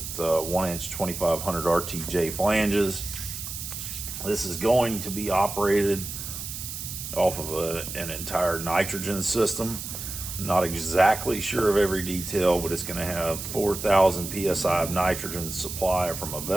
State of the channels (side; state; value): right; noise; hiss, 7 dB below the sound